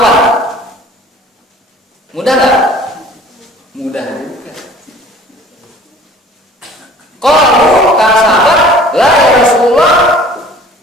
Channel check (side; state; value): both; normal; correlation 0.49